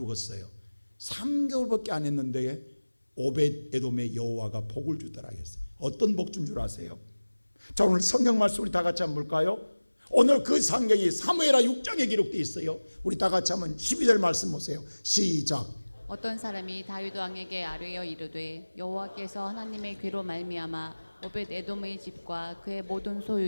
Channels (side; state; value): both; inverted; correlation -1.00